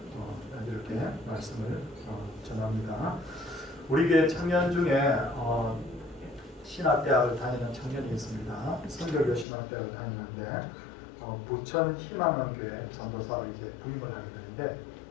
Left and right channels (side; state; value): right; drops out; at 9.5 s